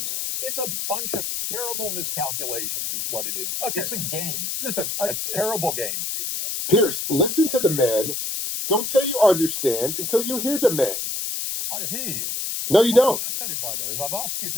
It's a bunch of terrible miscalculations is what it is. Okay. It's a game. Listen, a terrible game. Pierce, listen to the man. Don't say you understand until you hear the man. I hear you. No, you don't. What I'm fascinated by, though, is I've asked you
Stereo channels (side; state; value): left; noise; hiss, 3 dB below the sound